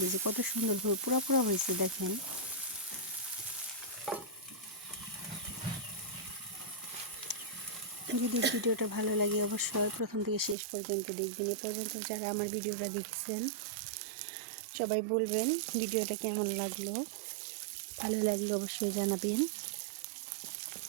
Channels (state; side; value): drops out; left; at 10.6 s